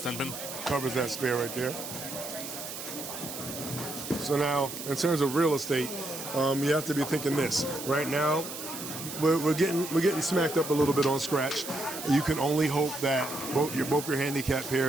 10-pin. covers that spare right there. So now, in terms of real estate, you have to be thinking this. Right now, we're getting smacked up a little bit on scratch. You can only hope that both your handicap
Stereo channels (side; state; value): right; noise; hiss, 9 dB below the sound